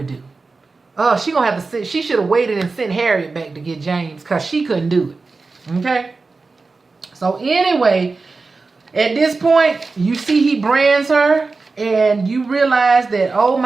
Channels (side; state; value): left; quieter; 4.0 dB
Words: do. She gonna have to she should have waited and sent Harriet back to get James because she couldn't do it. Okay? So anyway, at this point, you see he brands her and you realize that, oh